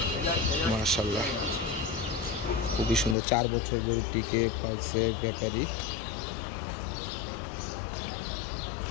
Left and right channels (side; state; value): right; drops out; at 3.2 s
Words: মাশাআল্লাহ খুবই সুন্দর। 4 বছর গরুটিকে পালছে ব্যাপারী।